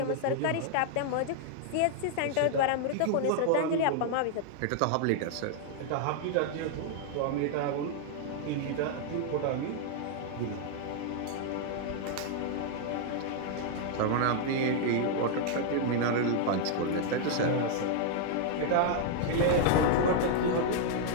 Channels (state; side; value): different; both; correlation -0.01